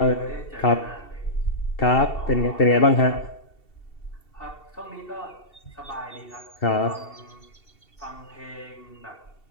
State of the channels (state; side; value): late; right; 2.7 ms